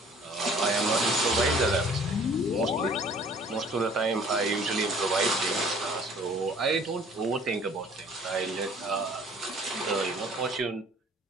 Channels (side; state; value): both; normal; correlation 0.53